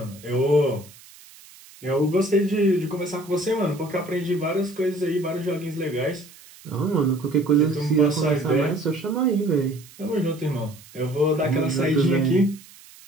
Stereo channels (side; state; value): right; noise; hiss, 22 dB below the sound